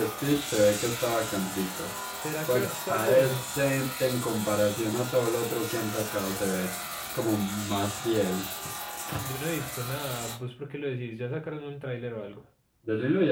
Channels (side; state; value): both; identical; correlation 1.00